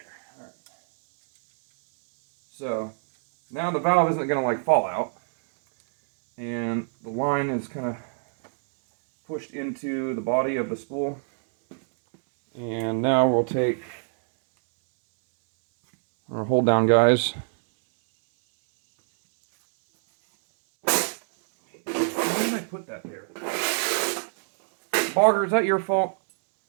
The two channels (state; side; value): silent; left; digital silence